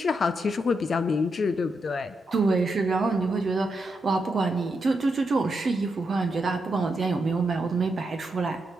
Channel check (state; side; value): normal; both; correlation 0.83